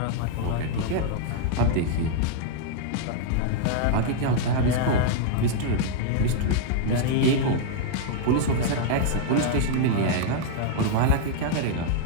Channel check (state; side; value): different; both; correlation -0.01